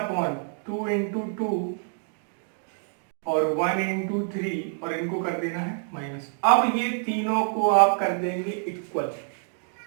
इंटू 2 और 1 इंटू 3 और इनको कर देना है माइनस। अब ये तीनों को आप कर देंगे इक्वल।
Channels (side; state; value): left; silent; 60 dB below the other